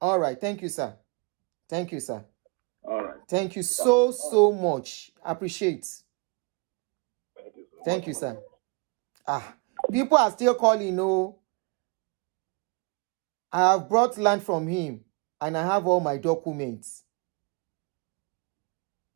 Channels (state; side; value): quieter; left; 31.3 dB